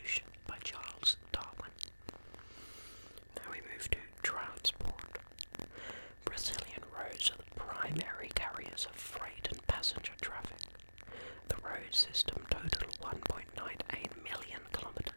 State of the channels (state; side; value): inverted; both; correlation -1.00